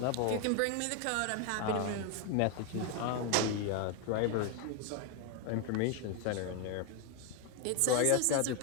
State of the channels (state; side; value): different; both; correlation 0.01